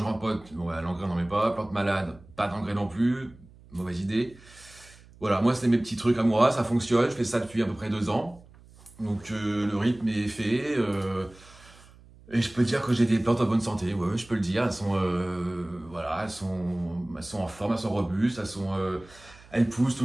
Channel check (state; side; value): noise; right; hum, 24 dB below the sound